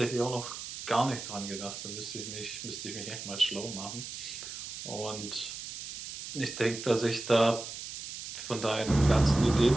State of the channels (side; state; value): right; noise; hiss, 9 dB below the sound